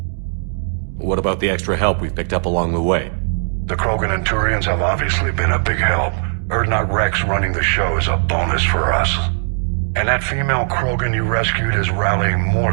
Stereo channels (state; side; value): silent; left; 59 dB below the other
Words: What about the extra help we've picked up along the way? The Krogan and Turians have obviously been a big help. Urdnot Rex running the show is a bonus for us. And that female Krogan you rescued is rallying more